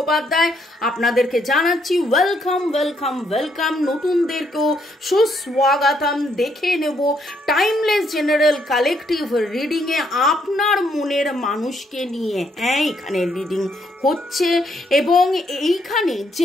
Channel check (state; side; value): normal; both; correlation 0.73